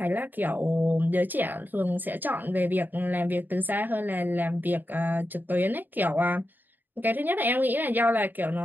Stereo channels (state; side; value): late; left; 0.090 ms